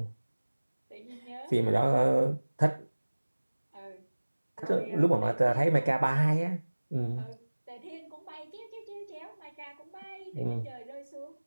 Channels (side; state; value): both; inverted; correlation -1.00